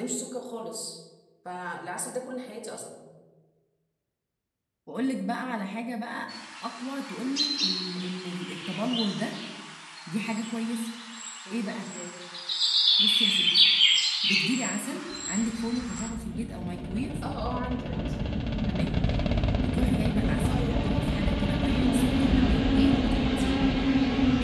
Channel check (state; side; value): identical; both; correlation 1.00